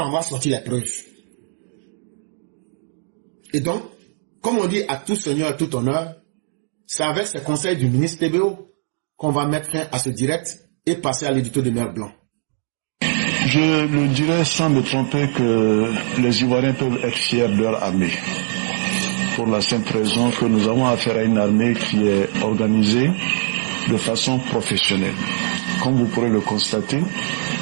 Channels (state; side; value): silent; left; digital silence